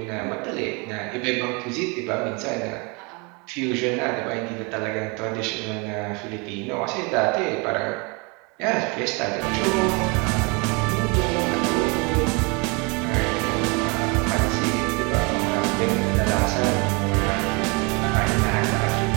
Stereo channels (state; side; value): quieter; left; 30.2 dB